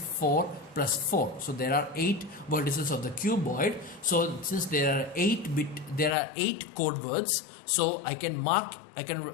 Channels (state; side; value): drops out; right; at 6.2 s